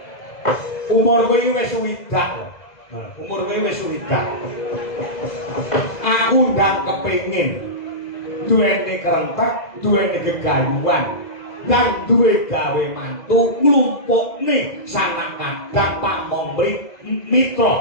umur kowe iki wis suwidak lho umur kowe wis suwidak aku ndang kepengin duweni kerentek duweni gegayuhan dan duwe gawe mantu nglumpukne sanak kadang pamong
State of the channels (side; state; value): right; late; 2.0 ms